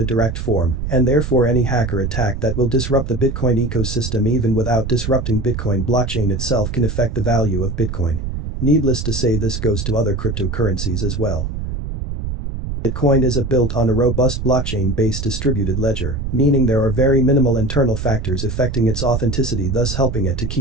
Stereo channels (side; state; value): right; noise; rumble, 5 dB below the sound